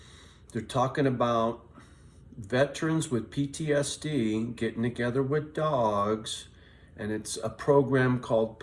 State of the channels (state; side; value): identical; both; correlation 1.00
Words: they're talking about veterans with PTSD getting together with dogs, and it's a program called